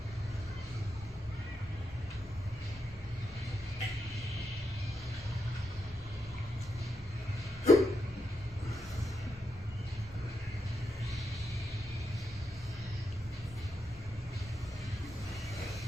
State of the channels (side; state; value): both; normal; correlation 0.84